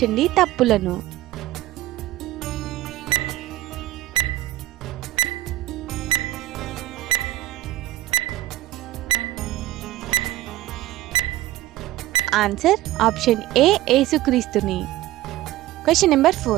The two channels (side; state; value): left; quieter; 16.0 dB